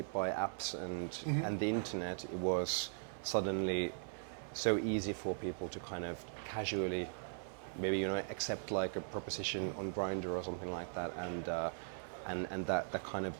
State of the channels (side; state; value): left; silent; 51 dB below the other